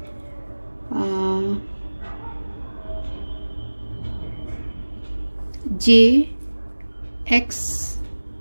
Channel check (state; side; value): inverted; both; correlation -1.00